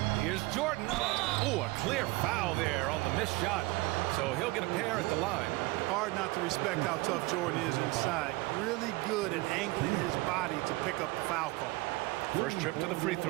Here's Jordan. Oh, a clear foul there on the missed shot. So he'll get a pair at the line. Hard not to respect how tough Jordan is inside. Really good at angling his body to pick up the foul call. First trip to the free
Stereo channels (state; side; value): quieter; left; 22.4 dB